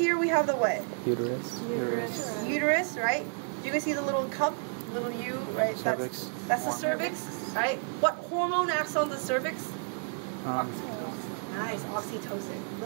we have the what? Uterus. Uterus, right? You can see the little cup, little U, right? Cervix. That's the cervix, right? What hormone acts on the cervix? Nice, oxytocin.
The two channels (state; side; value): silent; left; 57 dB below the other